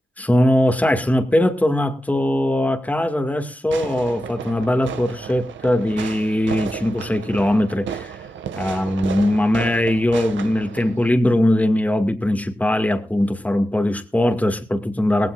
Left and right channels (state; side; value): normal; both; correlation 0.91